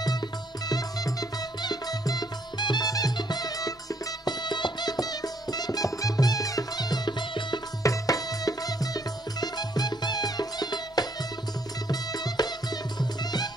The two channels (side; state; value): both; normal; correlation 0.70